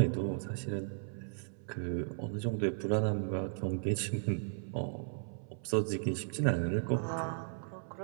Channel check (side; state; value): left; silent; 54 dB below the other